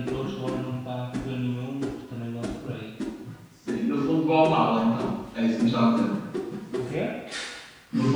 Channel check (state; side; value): identical; both; correlation 1.00